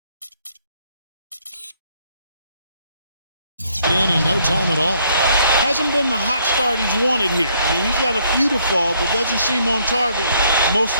In no time at all. Hasn't been the hot start he's wanted here. I mean, he's got a few to fall, but doesn't seem on target most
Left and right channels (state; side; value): inverted; both; correlation -0.67